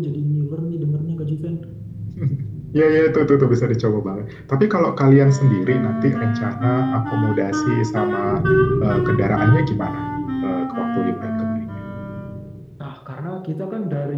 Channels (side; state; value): both; identical; correlation 1.00